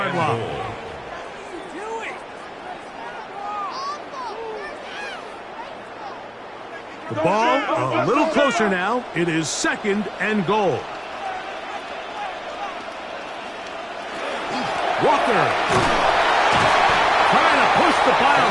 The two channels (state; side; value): identical; both; correlation 1.00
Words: line. The ball a little closer now. It is 2nd and goal. Walker trying to push the pile